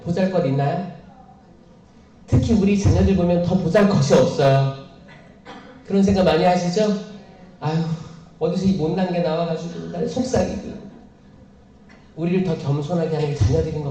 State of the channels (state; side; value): identical; both; correlation 1.00